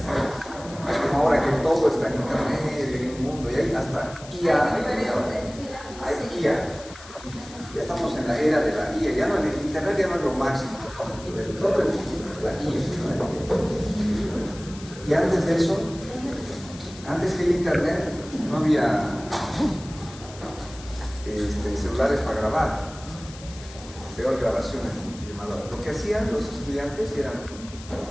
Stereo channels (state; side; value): noise; left; hiss, 17 dB below the sound